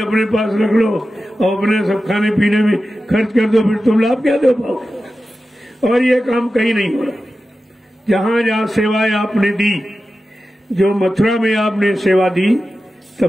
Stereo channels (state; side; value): normal; both; correlation 0.93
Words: पास रख लो और अपने सब खाने पीने में खर्च कर दो, फिर तुम लाभ क्या दे पाओगे। और ये काम कहीं नहीं हो रहा। जहां जहां सेवाएं आपने दी, जो मथुरा में आपने सेवा दी,